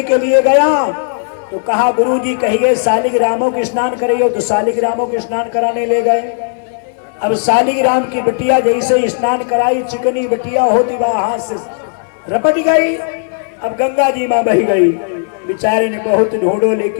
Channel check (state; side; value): silent; right; digital silence